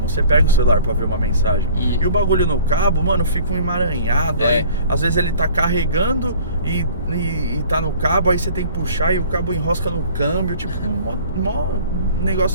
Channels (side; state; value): both; inverted; correlation -0.49